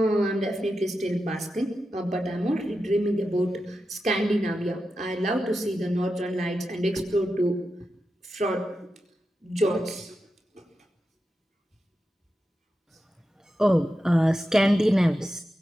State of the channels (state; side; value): normal; both; correlation 0.90